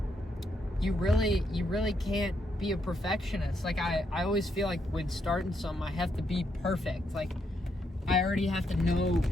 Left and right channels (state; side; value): normal; both; correlation 0.78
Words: you really can't be a perfectionist. Like, I always feel like when starting something, I have to be perfect. Like, I already have to know